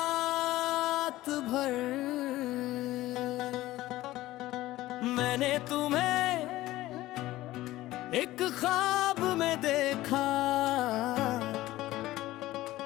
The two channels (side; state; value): right; quieter; 16.5 dB